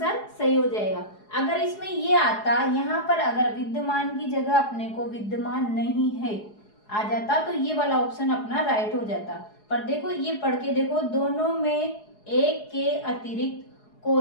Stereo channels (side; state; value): right; late; 4.8 ms